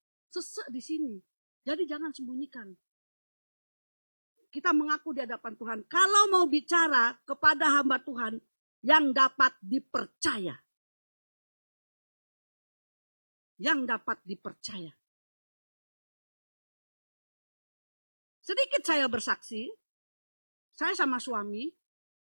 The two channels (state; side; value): inverted; both; correlation -1.00